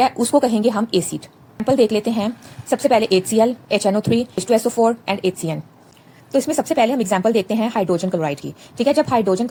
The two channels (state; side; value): identical; both; correlation 1.00